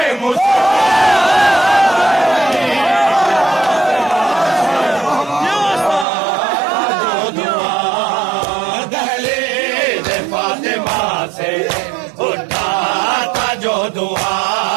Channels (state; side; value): drops out; left; at 6.1 s